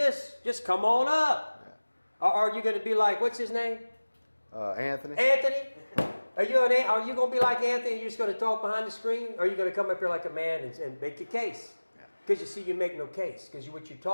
just come on up. Or are you going to be like, what's his name? Anthony. Anthony? Are you going to be like Anthony and you're just going to talk behind the screen? Or are you going to come up here like a man and make a case? Because you see, you make no case. Because what you're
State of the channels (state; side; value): inverted; both; correlation -1.00